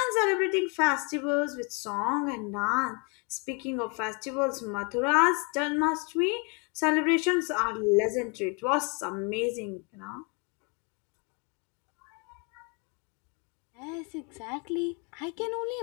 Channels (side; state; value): right; quieter; 34.0 dB